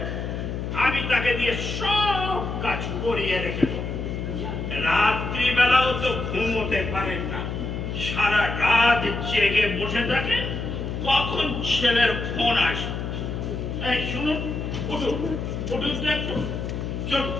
আমি তাকে দিয়ে সব কাজ করিয়ে রেখে দেবো। রাত্রিবেলাও তো ঘুমোতে পারেন না, সারা রাত জেগে বসে থাকেন, কখন ছেলের ফোন আসে। এই শুনুন, উঠুন উঠুন তো একটু, চল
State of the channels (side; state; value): left; noise; hum, 4 dB below the sound